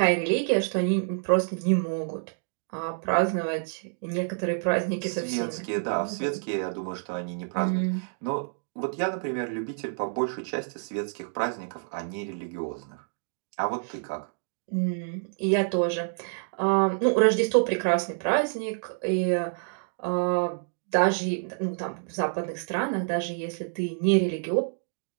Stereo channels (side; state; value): left; silent; digital silence